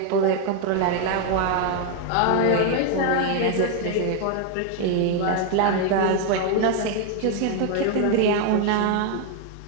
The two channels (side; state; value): both; different; correlation 0.01